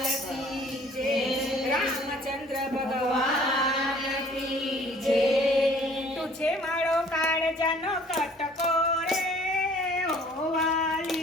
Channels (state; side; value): normal; both; correlation 0.54